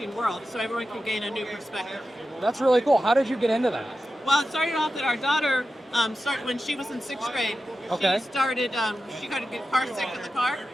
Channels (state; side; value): normal; both; correlation 0.92